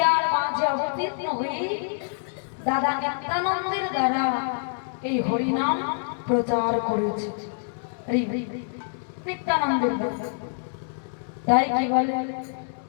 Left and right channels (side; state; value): right; silent; digital silence